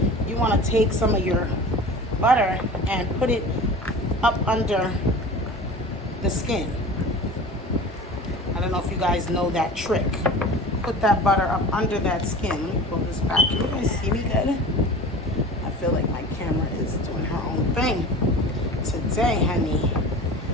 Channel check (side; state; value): both; normal; correlation 0.37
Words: You want to take some of your butter and put it up under the skin. I don't know if you guys know that trick. Put that butter up under that skin. Let me pull this back. Can you guys see me good? I feel like my camera is doing her own thing today, honey.